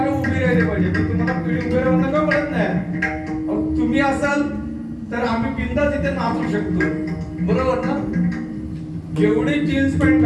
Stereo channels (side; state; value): both; identical; correlation 1.00